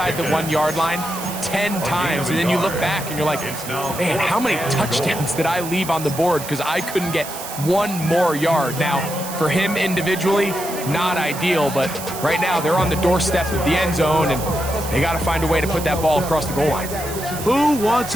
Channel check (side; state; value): right; noise; hiss, 10 dB below the sound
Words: the 1-yard line 10 times, and then you look back and you're like, man, how many touchdowns did I leave on the board because I couldn't get one more yard? Now, for him individually, not ideal, but right now they're on the doorstep of the end zone, and they got to find a way to put that ball across the goal line. Who wants